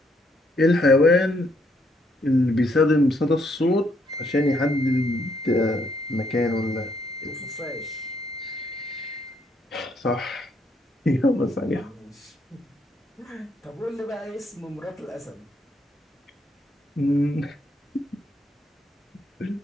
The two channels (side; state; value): both; normal; correlation 0.72